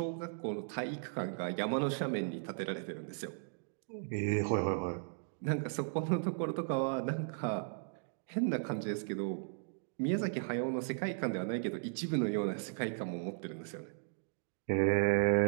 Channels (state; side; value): silent; left; digital silence